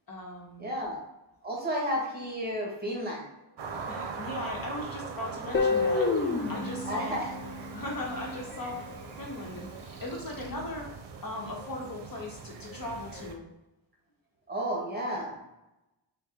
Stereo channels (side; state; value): both; normal; correlation -0.11